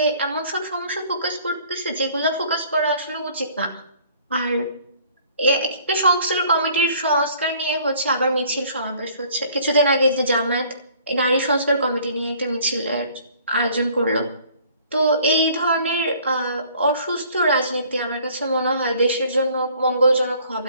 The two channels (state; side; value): inverted; both; correlation -0.56